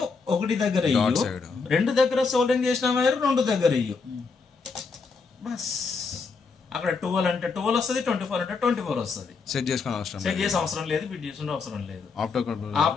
1 దగ్గర ఇయ్యు, 2 దగ్గర సోల్డింగ్ చేసిన వైరు 2 దగ్గర ఇయ్యు. బస్ అక్కడ 12 అంటే 12 వస్తుంది, 24 అంటే 24 వస్తుంది. సెట్ చేసే అవసరం లేదు, బిట్ చేసిన అవసరం లేదు,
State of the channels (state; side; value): quieter; right; 4.8 dB